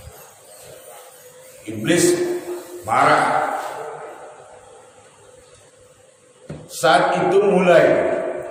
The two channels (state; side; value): identical; both; correlation 1.00